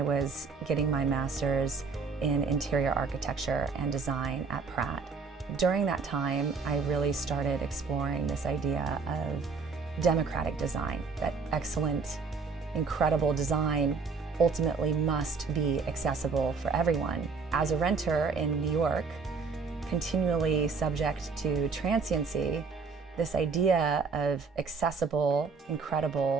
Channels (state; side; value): quieter; left; 4.8 dB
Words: was getting my master's in interior architecture and design at Pratt. During that time, I really started exploring this idea of democratic design, that excellent, incredible design ultimately must be accessible for everyone. As a renter in New York, continually subject to transiency, this idea of accessible,